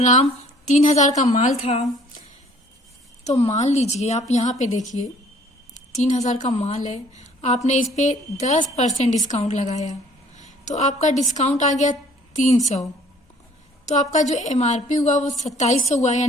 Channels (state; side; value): normal; both; correlation 0.57